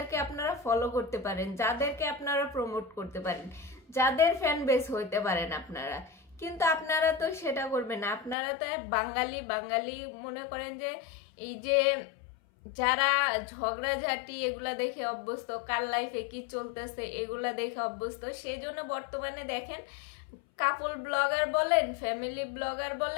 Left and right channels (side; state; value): right; drops out; at 8.3 s